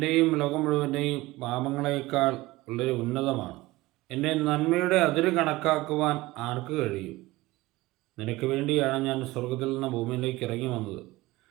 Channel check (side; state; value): left; quieter; 19.5 dB